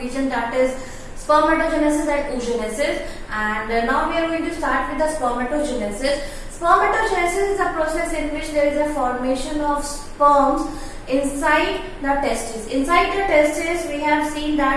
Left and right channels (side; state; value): both; identical; correlation 1.00